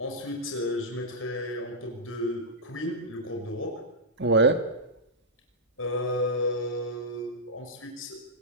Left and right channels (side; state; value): both; normal; correlation -0.11